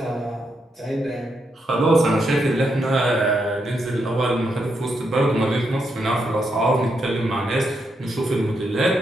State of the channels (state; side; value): normal; both; correlation 0.81